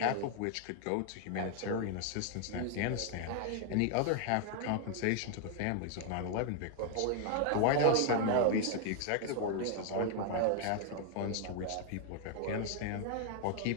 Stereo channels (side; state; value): both; different; correlation 0.00